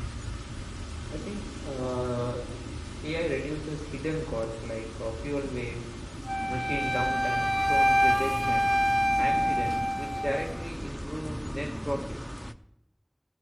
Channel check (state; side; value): identical; both; correlation 1.00